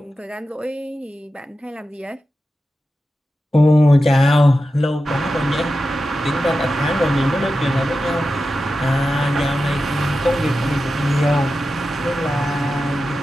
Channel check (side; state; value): both; normal; correlation 0.91